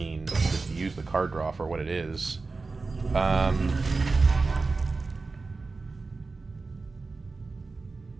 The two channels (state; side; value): quieter; left; 3.9 dB